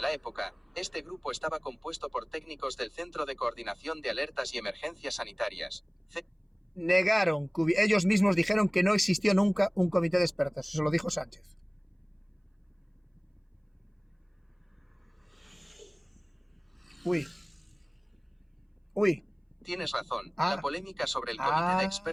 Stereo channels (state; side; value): identical; both; correlation 1.00